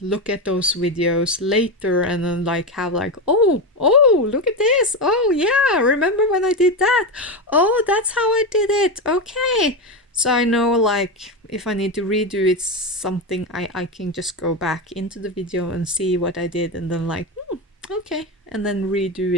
look at those videos later and then like have like, oh, look at this, oh yeah, remember when I did that, oh that's how I did it, okay. So I know like if I need to redo it something, I can just go back into the video and see what I did and then like, okay, and then redo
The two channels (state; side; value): normal; both; correlation 0.14